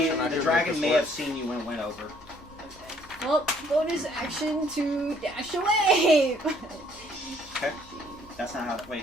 action. I the do dragon think may this have seen you when it went over. Well, bonus action to dash away. Okay. That's not how. Wait.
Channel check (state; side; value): normal; both; correlation 0.62